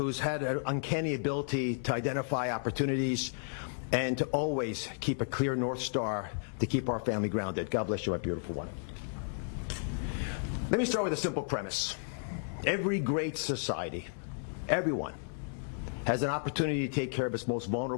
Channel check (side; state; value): right; silent; digital silence